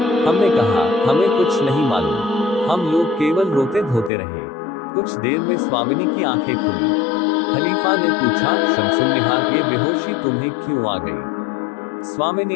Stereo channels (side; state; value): right; drops out; at 4.1 s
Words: हमने कहा हमें कुछ नहीं मालूम, हम लोग केवल रोते धोते रहे। कुछ देर में स्वामिनी की आंखें खुली। खलीफा ने पूछा शमसुन्निहार ये बेहोशी तुम्हें क्यों आ गई?